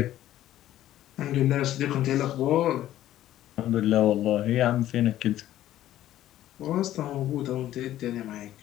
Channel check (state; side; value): quieter; right; 13.2 dB